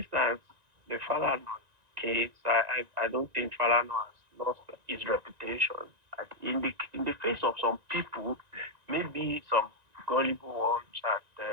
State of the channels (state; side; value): late; left; 1.9 ms